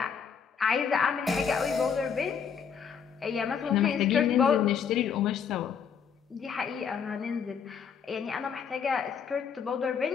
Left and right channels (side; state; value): right; quieter; 7.0 dB